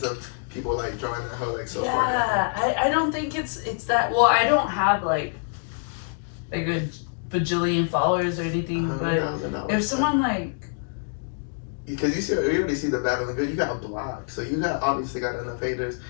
of people like drawing that hoe like so far down. Yeah, I don't think it's that. Well, I don't have like a bajillion followers or anything, but $100,000. if someone like, because you already see the bad and the good, you got blocked, so you obviously got enough haters,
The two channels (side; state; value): right; silent; digital silence